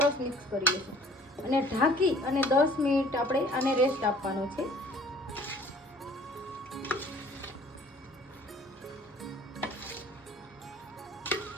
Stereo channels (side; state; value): both; normal; correlation 0.53